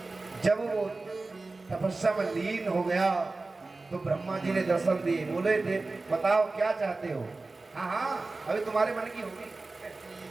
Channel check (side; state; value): left; quieter; 3.4 dB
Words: जब वो तपस्या में लीन हो गया तो ब्रह्मा जी ने दर्शन दिए। बोले बताओ क्या चाहते हो। हाँ हाँ अभी तुम्हारे मन की होगी